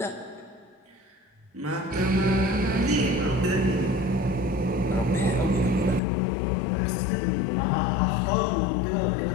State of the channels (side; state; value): right; drops out; at 6.0 s